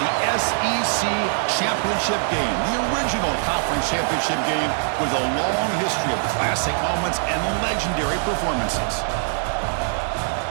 the SEC Championship game, the original conference championship game with a long history of classic moments and legendary performances.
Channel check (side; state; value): left; silent; digital silence